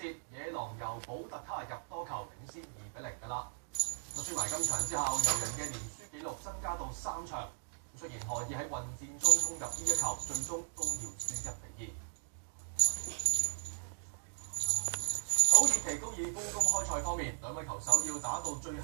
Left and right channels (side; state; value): left; silent; digital silence